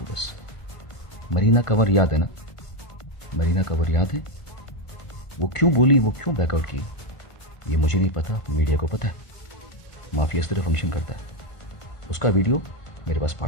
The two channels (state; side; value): late; right; 1.5 ms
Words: बस। मरीना कंवर याद है ना? मरीना कंवर याद है? वो क्यों बोली, वो क्यों बैकआउट की, ये मुझे नहीं पता, मीडिया को पता है। माफिया इस तरह फंक्शन करता है। उसका वीडियो मेरे पास